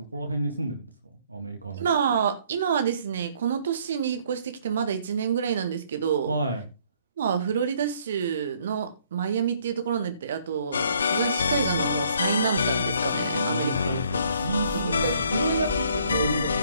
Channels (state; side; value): inverted; both; correlation -0.63